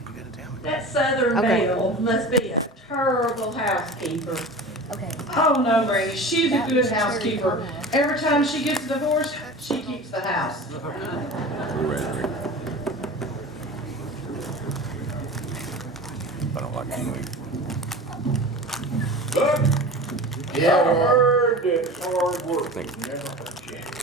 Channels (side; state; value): both; normal; correlation 0.34